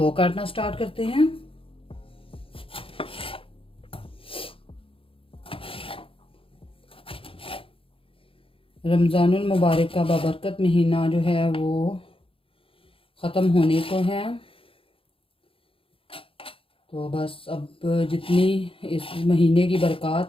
काटना स्टार्ट करते हैं। रमज़ानुल मुबारक का बाबरकत महीना जो है वो ख़त्म होने को है। तो बस अब जितनी इस महीने की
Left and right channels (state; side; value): late; right; 0.26 ms